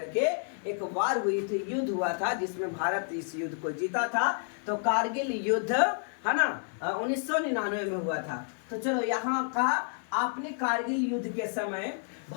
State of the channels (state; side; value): silent; right; 58 dB below the other